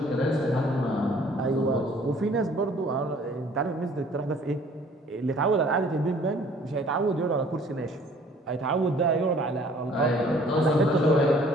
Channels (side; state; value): both; normal; correlation 0.55